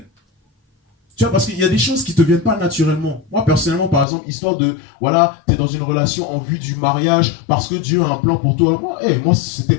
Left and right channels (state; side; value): drops out; right; at 4.0 s